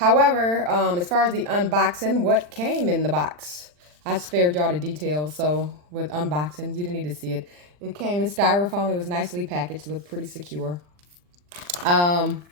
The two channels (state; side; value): late; left; 40 ms